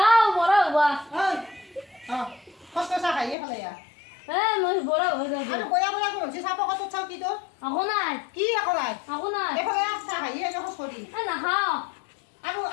বৰা হবা কষ্ট চাহ খাইয়ে পেলাই মই বৰা হৈ যাওঁ আৰু বয়া বয়া কৰিছে চাহ পকাটোত চাওঁ কি তোৰ আকৌ নাই কি আকৌ নাই এইফালে চাহ খাইয়ে খোজ কৰি নাখাওঁ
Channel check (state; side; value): drops out; right; at 3.4 s